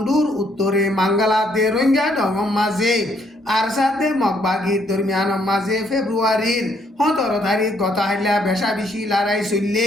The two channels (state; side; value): normal; both; correlation 0.70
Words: উত্তরে মাঙ্গালা দে রোহিঙ্গা ডঙ মাঝে আর সাথে মকবাগির দরমিয়ান মাঝে ফেব্রুয়ারির 17 তারিখ গত হাইলা বেশা বেশি লড়াই